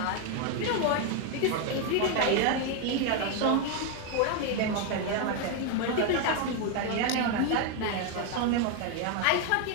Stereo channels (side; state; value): both; different; correlation 0.01